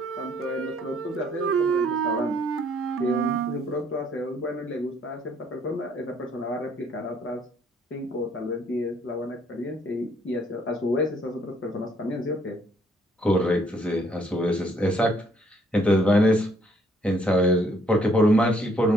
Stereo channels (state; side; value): normal; both; correlation 0.65